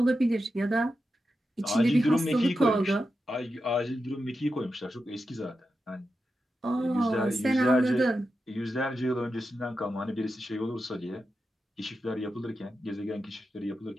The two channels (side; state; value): both; normal; correlation 0.89